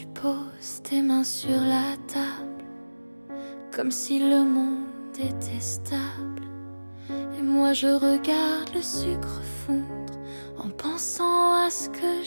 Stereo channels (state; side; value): inverted; both; correlation -1.00